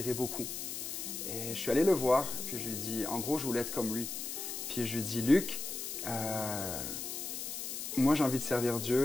beaucoup. Et je suis allé le voir. Puis je lui ai dit, en gros, je voulais être comme lui. Puis je lui ai dit, Luc, moi, j'ai envie de servir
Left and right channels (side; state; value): left; noise; hiss, 5 dB below the sound